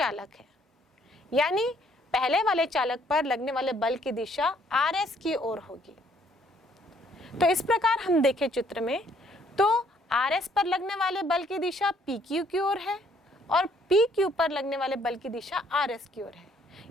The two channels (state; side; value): normal; both; correlation 0.65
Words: है, यानी पहले वाले चालक पर लगने वाले बल की दिशा RS की ओर होगी। तो इस प्रकार हम देखें चित्र में तो RS पर लगने वाले बल की दिशा PQ की ओर है और PQ पर लगने वाले बल की दिशा RS की ओर है,